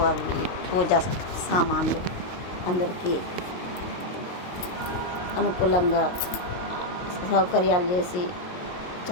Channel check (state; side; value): late; right; 22 ms